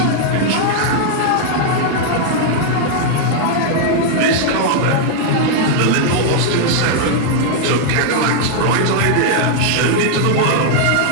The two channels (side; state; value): both; different; correlation -0.01